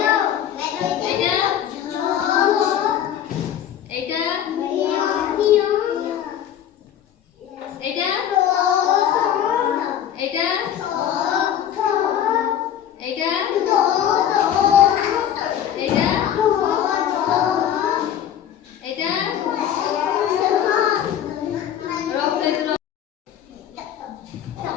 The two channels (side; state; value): right; quieter; 10.2 dB